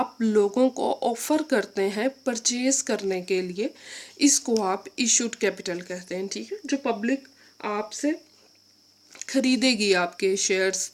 लोगों को ऑफर करते हैं परचेज करने के लिए, इसको आप इशूड कैपिटल कहते हैं। ठीक है, जो पब्लिक आपसे खरीदेगी, आपके शेयर्स,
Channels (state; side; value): identical; both; correlation 1.00